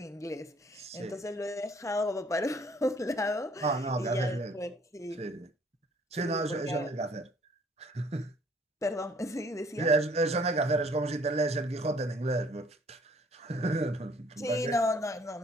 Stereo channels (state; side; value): normal; both; correlation 0.59